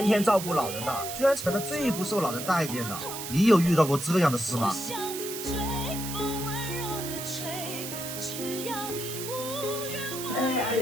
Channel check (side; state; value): right; noise; hiss, 7 dB below the sound